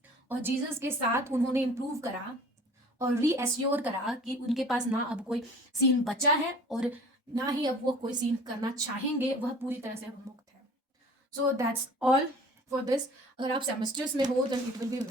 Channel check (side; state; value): both; normal; correlation 0.45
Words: और Jesus के साथ उन्होंने इम्प्रूव करा और रीएश्योर करा कि उनके पास ना अब कोई सीन बचा है और ना ही अब वो कोई सीन करना चाहेंगे, वह पूरी तरह से अब मुक्त है। So that's all for this. अगर आप सेमेस्टर्स में हो तो it will be